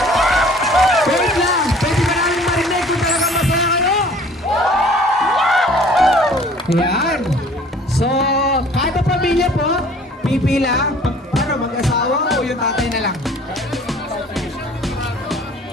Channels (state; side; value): normal; both; correlation 0.52